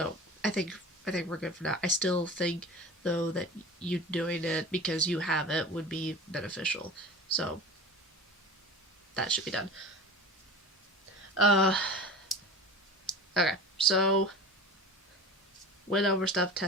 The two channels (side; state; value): both; normal; correlation 0.34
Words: I think we're good for now. I still think though that you doing it because you have it would be beneficial. So that should be done. Uh, okay. So went over stuff,